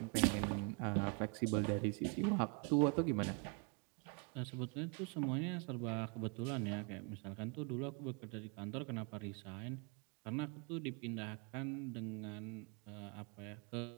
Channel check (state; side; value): quieter; left; 35.7 dB